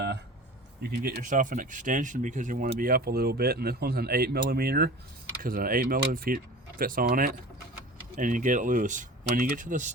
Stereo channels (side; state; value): both; normal; correlation 0.38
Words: you can get yourself an extension because you want to be up a little bit, and this one's an 8mm because an 8mm fits on it, and you get it loose. When you get to the